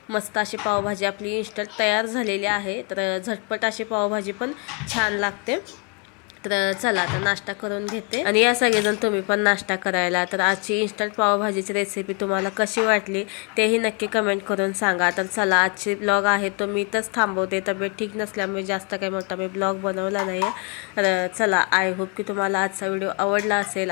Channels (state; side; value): quieter; right; 32.5 dB